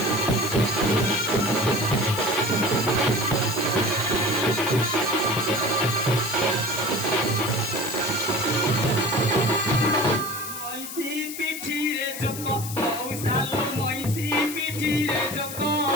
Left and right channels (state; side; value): noise; left; hiss, 9 dB below the sound